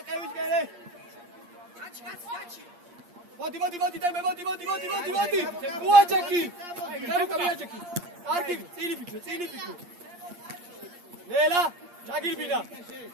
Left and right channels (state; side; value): late; left; 8.6 ms